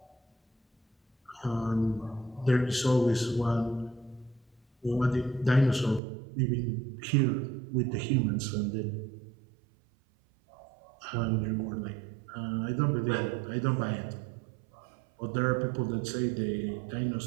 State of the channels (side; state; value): left; drops out; at 6.0 s